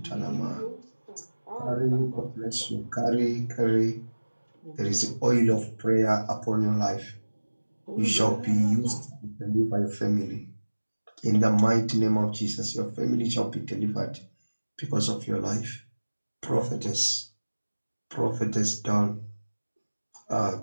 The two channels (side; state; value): both; inverted; correlation -1.00